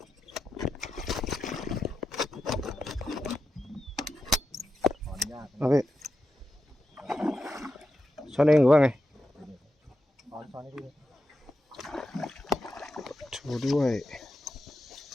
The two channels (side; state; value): both; normal; correlation 0.89